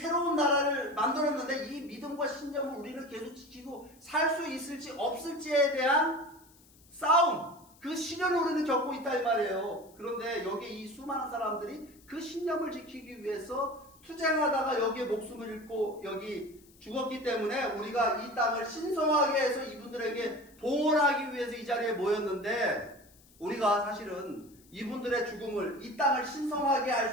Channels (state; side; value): noise; left; hiss, 27 dB below the sound